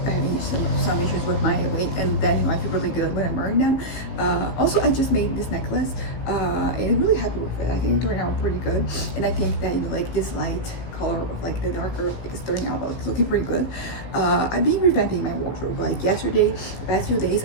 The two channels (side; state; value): right; late; 16 ms